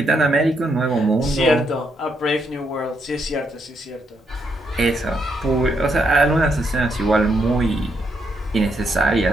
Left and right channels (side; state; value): both; normal; correlation 0.78